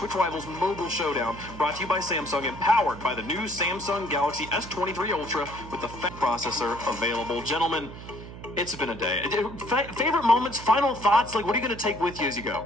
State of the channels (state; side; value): noise; right; hum, 13 dB below the sound